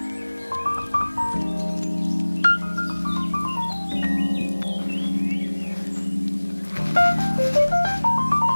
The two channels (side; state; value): both; inverted; correlation -1.00